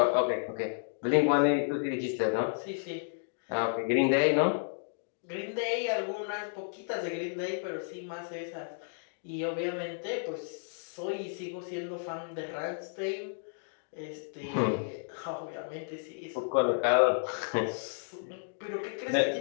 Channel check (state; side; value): silent; right; digital silence